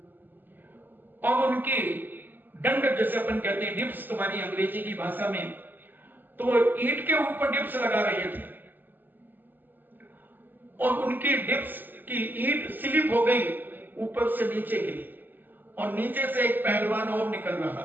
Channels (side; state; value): left; late; 0.090 ms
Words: और उनकी दंड जैसे अपन कहते हैं डिप्स तुम्हारी अंग्रेजी की भाषा में, तो वो ईंट के ऊपर डिप्स लगा रहे थे और उनकी डिप्स की ईंट स्लिप हो गई, ऊपर से नीचे गिरी और नीचे से एक पहलवान और निकल रहा